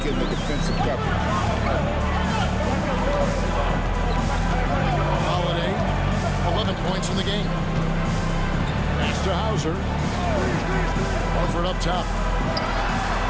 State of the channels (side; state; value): both; identical; correlation 1.00